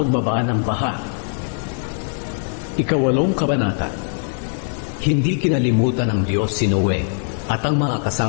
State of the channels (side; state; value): right; silent; 65 dB below the other